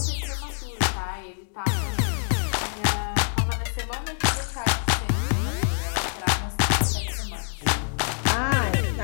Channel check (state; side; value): silent; right; digital silence